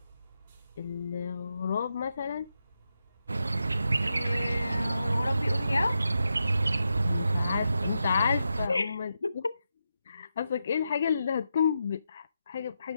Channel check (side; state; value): both; inverted; correlation -0.86